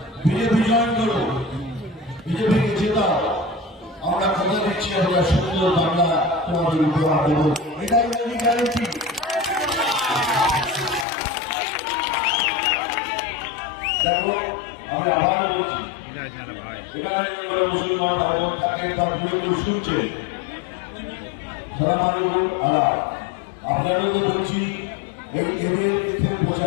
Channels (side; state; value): right; drops out; at 11.1 s